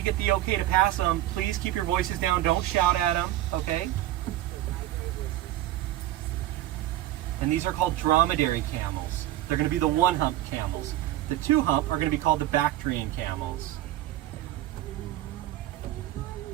get the okay to pass them. Please keep your voices down. Don't shout at them, okay? And these are called dromedary camels. They're going to be the one-hump camels. The two-hump are going to be called the Bactrian camels.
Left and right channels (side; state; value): left; quieter; 14.5 dB